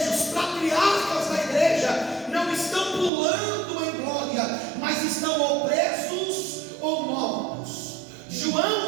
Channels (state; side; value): drops out; left; at 3.1 s